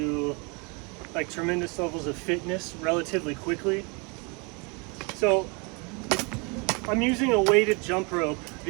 like tremendous levels of fitness relatively quickly. So I'm using a weighted jump rope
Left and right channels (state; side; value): quieter; left; 31.2 dB